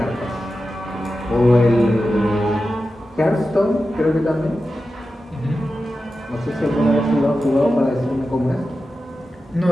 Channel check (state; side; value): normal; both; correlation 0.92